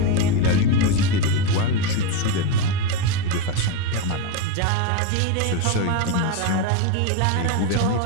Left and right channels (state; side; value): different; both; correlation 0.04